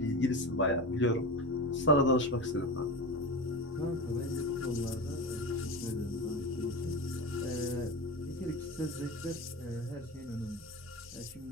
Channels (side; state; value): right; noise; rumble, 25 dB below the sound